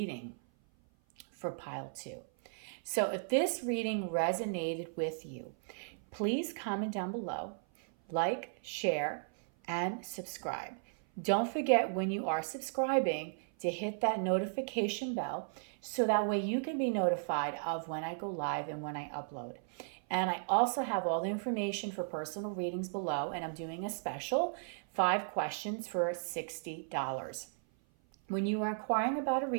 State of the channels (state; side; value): silent; left; 54 dB below the other